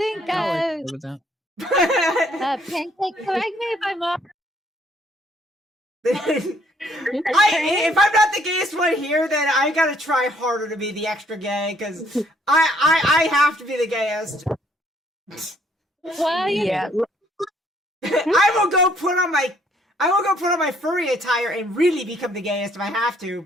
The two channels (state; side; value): normal; both; correlation 0.65